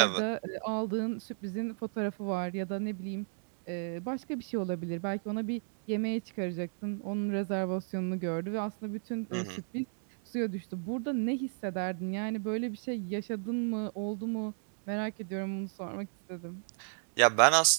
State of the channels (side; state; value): left; silent; digital silence